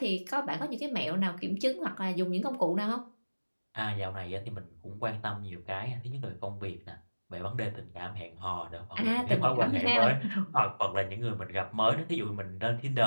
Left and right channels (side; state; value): both; inverted; correlation -1.00